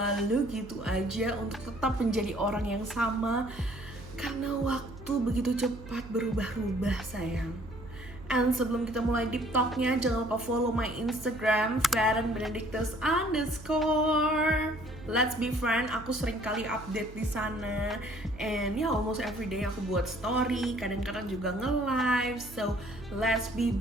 gitu aja, untuk tetap menjadi orang yang sama. Karena waktu begitu cepat berubah-ubah sayang. And sebelum kita mulai deep talknya, jangan lupa follow my Instagram @ferenbenedictus_. Let's be friend. Aku sering kali update di sana. And almost every day aku buat story, kadang-kadang juga nge-live. So let's be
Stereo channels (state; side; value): noise; right; hum, 16 dB below the sound